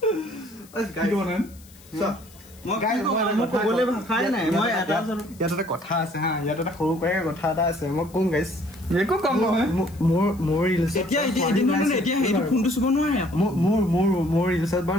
ক'বলৈ ভাষাই নাই মই এটা কথা আছে হা ইয়াত এটা সৰু কৈ কথা এটা আছে মই কম গাইছ একো কম নহয় মোৰ ৰিলছ এতিয়া এইটো ফোনটো চুব নোৱাৰে মোৰ ৰিলছত বাৰু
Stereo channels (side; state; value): left; noise; hiss, 24 dB below the sound